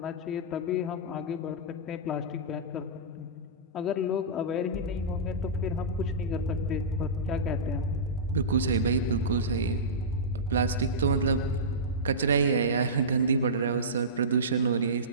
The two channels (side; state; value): both; normal; correlation -0.18